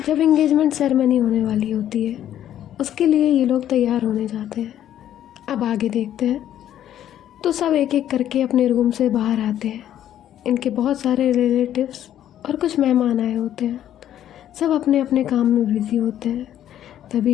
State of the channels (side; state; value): right; quieter; 11.2 dB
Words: जब एंगेजमेंट सेरेमनी होने वाली होती है उसके लिए ये लोग तैयार होने जाते हैं। अब आगे देखते हैं। तो सब एक एक करके अपने रूम से बाहर आते हैं। इनके बहुत सारे रिलेटिव्स और कुछ मेहमान आए होते हैं। सब अपने अपने काम में बिजी होते हैं।